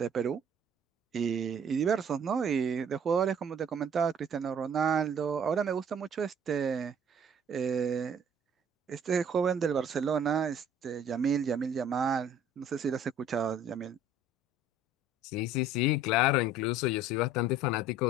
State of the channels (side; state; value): both; normal; correlation 0.53